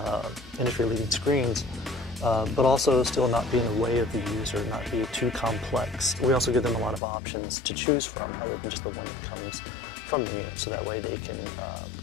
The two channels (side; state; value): right; drops out; at 7.0 s